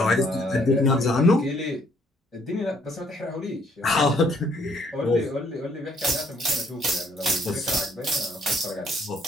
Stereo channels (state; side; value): normal; both; correlation 0.66